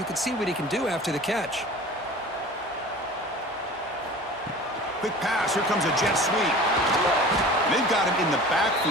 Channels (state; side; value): normal; both; correlation 0.41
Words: can see what he can do after the catch. Quick pass. Here comes a jet sweep. They've got him in the